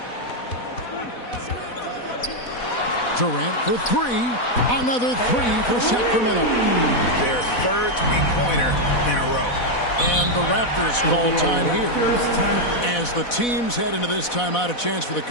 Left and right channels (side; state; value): right; late; 4.1 ms